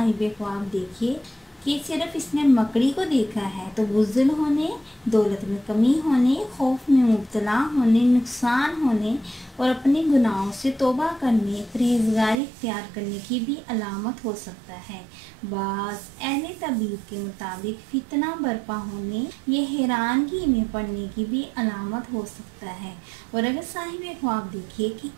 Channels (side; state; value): left; drops out; at 12.4 s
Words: ख्वाब देखे कि सिर्फ इसने मकड़ी को देखा है तो बुज़्दिल होने, दौलत में कमी होने, खौफ में मुब्तला होने, नुकसान होने और अपने गुनाहों से तौबा करने, परहेज़गारी इख्तियार करने की भी अलामत हो सकता है। बास अहले तबीब के मुताबिक फितना बर्पा होने या हैरानगी में पड़ने की भी अलामत हो सकता है। और अगर साहिब ख्वाब देखे कि